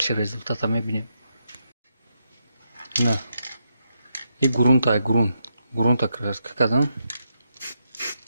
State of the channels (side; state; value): both; inverted; correlation -0.82